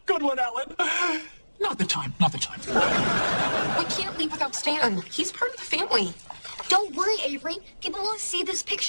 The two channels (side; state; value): both; inverted; correlation -1.00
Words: Good one, Ellen. Not the time. We can't leave without Stan. He's part of the family. Don't worry, Avery. People will see this